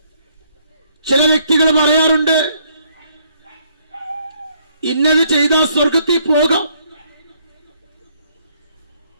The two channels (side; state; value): both; inverted; correlation -0.68